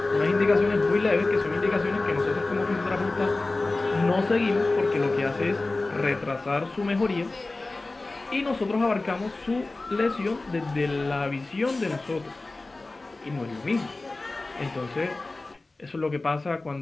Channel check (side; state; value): right; quieter; 3.2 dB